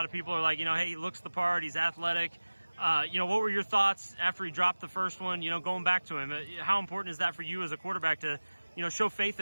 of people are like, hey, he looks the part, he's athletic. What were your thoughts after he dropped the first one, going back to him? How important is that for you as a quarterback to, show faith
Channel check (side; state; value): both; inverted; correlation -1.00